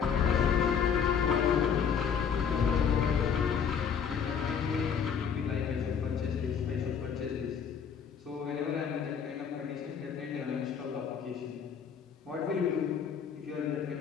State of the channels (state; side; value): quieter; right; 7.2 dB